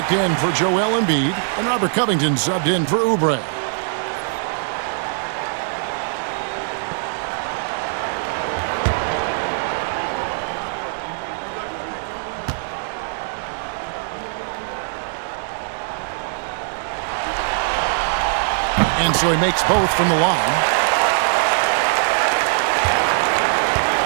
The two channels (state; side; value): silent; left; digital silence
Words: in for Joel Embiid, and Robert Covington subbed in for Oubre. And so he makes both from the line.